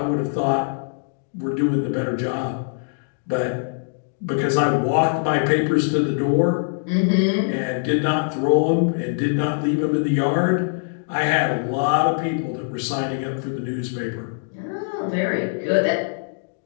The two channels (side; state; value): right; silent; digital silence